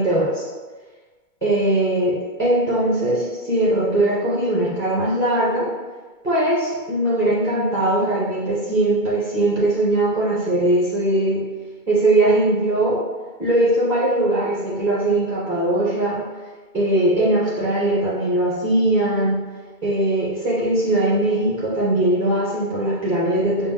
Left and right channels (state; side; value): late; right; 2.2 ms